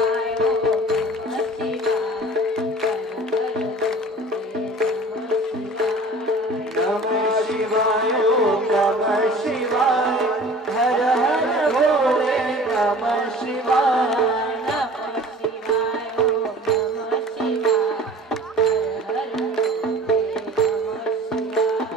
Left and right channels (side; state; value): both; normal; correlation 0.44